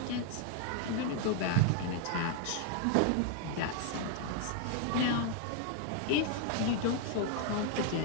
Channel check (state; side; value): different; both; correlation 0.00